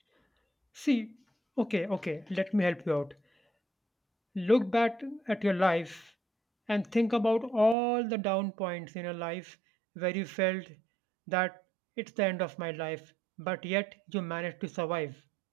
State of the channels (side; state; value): left; drops out; at 7.8 s